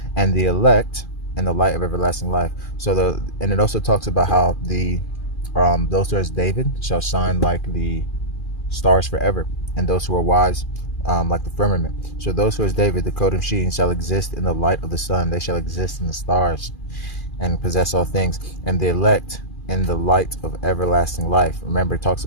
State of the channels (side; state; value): right; late; 2.4 ms